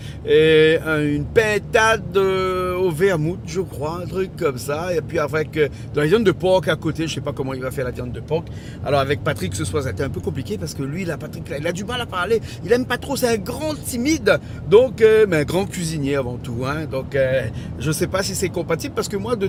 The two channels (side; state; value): both; identical; correlation 1.00